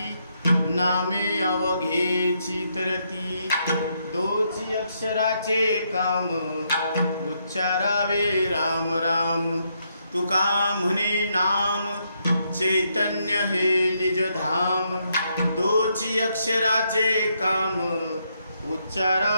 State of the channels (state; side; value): inverted; both; correlation -0.77